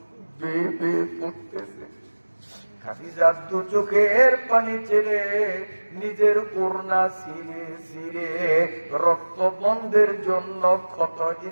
বেয়ে বেয়ে পড়তেছে। খাদিজা 2 চোখের পানি ছেড়ে নিজের ওড়না ছিঁড়ে ছিঁড়ে রক্ত বন্ধের জন্য ক্ষত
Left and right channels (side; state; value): both; inverted; correlation -1.00